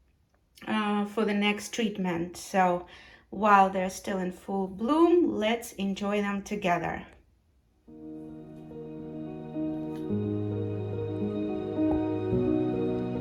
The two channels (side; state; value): both; identical; correlation 1.00